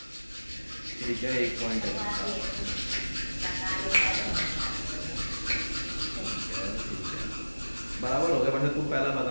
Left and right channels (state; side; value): inverted; both; correlation -1.00